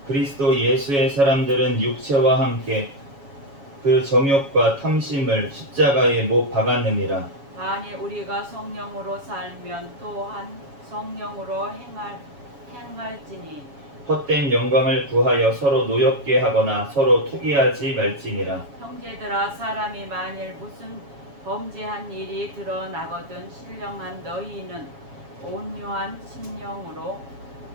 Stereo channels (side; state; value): left; late; 7.2 ms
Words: 그리스도 예수의 사람들은 육체와 함께 그 정욕과 탐심을 십자가에 못 박았느니라. 만일 우리가 성령으로 살면 또한 성령으로 행할지니 헛된 영광을 구하여 서로 노엽게 하거나 서로 투기하지 말지니라. 형제들아, 사람이 만일 무슨 범죄한 일이 드러나거든 신령한 너희는 온유한 심령으로